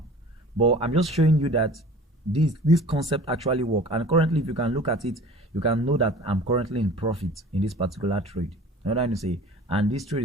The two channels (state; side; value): normal; both; correlation 0.44